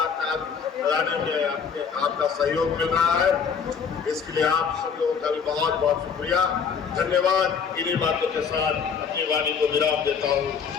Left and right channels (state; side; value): quieter; right; 6.4 dB